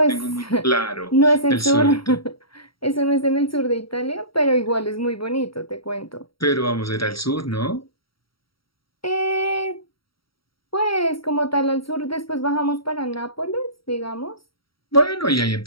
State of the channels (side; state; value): right; late; 0.75 ms